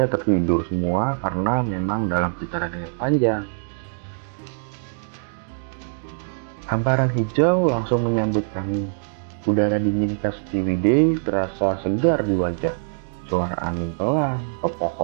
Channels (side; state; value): left; silent; digital silence